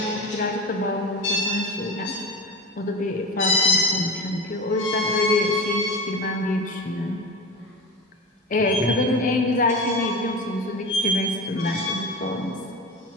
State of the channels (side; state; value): both; normal; correlation 0.28